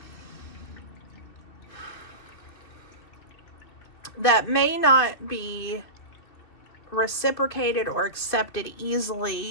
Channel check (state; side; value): late; right; 2.7 ms